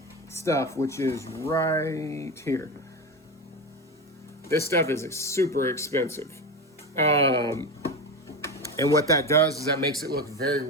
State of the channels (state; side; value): normal; both; correlation 0.21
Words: stuff, which is right here. This stuff is super expensive, and what that does is that makes it look very